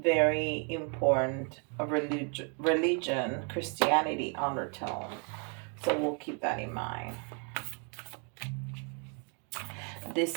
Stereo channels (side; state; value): left; quieter; 37.3 dB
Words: important religion, Christianity undertone. So we'll keep that in mind.